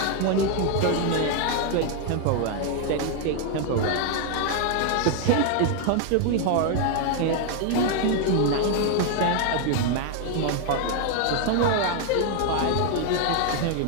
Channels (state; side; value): different; both; correlation 0.01